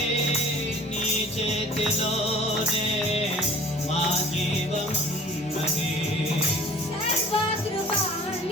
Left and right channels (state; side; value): normal; both; correlation 0.47